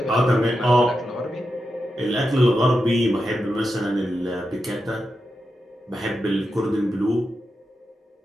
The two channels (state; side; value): normal; both; correlation 0.88